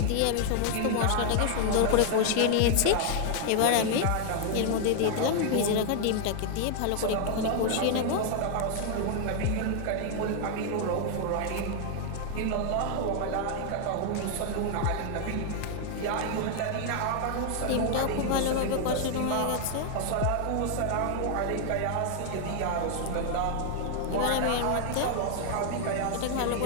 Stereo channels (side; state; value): both; different; correlation 0.00